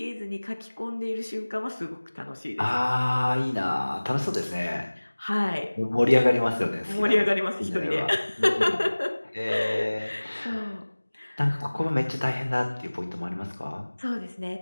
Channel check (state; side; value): inverted; both; correlation -1.00